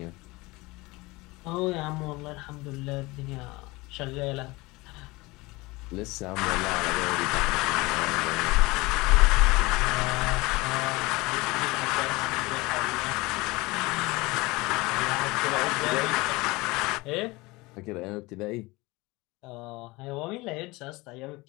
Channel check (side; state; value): right; quieter; 22.7 dB